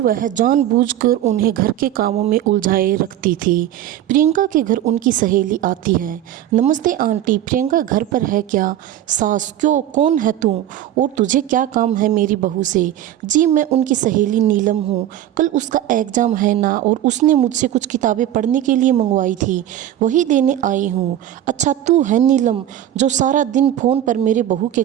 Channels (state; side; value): quieter; left; 11.9 dB